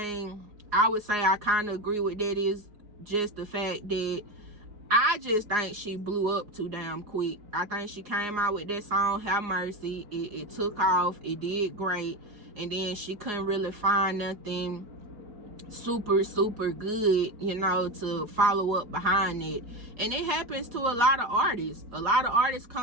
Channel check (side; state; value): left; late; 4.8 ms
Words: I would say I kind of agree with that is just the fact that I just think she blew up too damn quick. I think she came out with that song, Have Mercy. It took off. It did great. And then she couldn't really find nothing super good, you know, to follow up behind it. And it happens to a lot of artists. A lot of artists